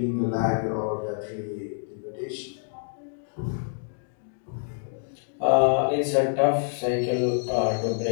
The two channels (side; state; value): right; silent; digital silence